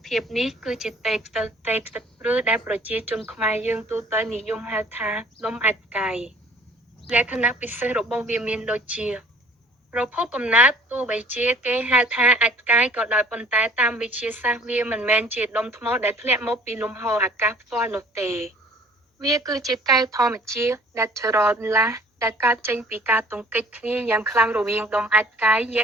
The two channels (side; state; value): both; normal; correlation 0.53